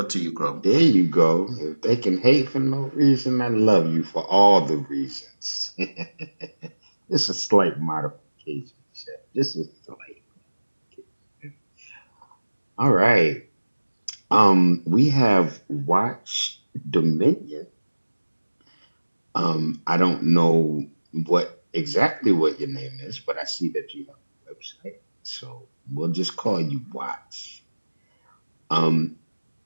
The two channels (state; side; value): inverted; both; correlation -1.00